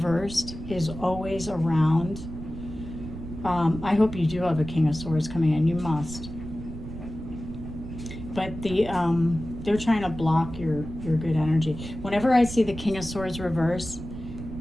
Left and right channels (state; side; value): noise; right; rumble, 10 dB below the sound